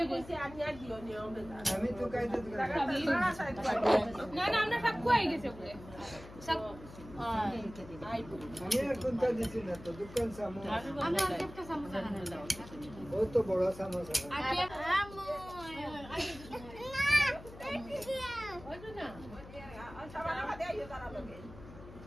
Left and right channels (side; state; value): left; noise; hum, 16 dB below the sound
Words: কইছি আমি আর দিও নিও আমি তো কাইতে না না আমরা সব কই গেছে বলে সব আমি আর কোনটা দিছি না তো দোকান সামো আমরা একটা সমস্যা না ও তো বড় সমস্যা আমু